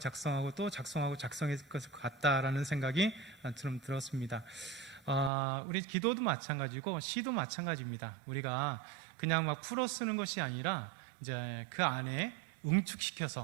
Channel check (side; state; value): left; drops out; at 5.3 s